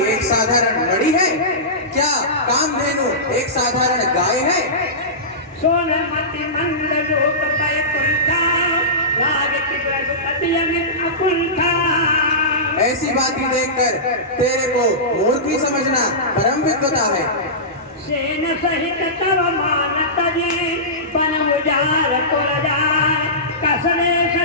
एक साधारण मणि है? क्या कामधेनु एक साधारण गाय है? सोनमति मंद लोक पय कुंठा राग की रघुपति अमित अकुंठा। ऐसी बातें देखकर तेरे को मूर्ख समझना परम विद्वता है। सेन सहित तव मान तजे बन उजार पुर जाय कसरे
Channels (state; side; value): normal; both; correlation -0.19